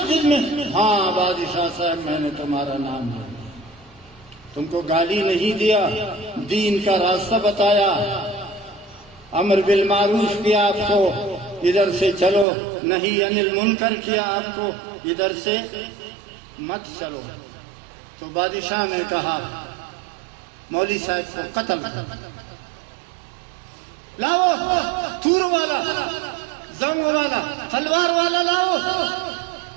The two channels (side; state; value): left; drops out; at 12.5 s